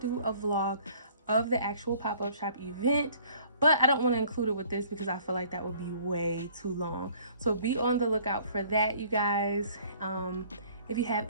a vlog of the actual pop-up shop event, but I don't want to include it with this because I feel like that would be way too long. So be on the lookout for that, you guys. If you have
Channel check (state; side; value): inverted; both; correlation -0.55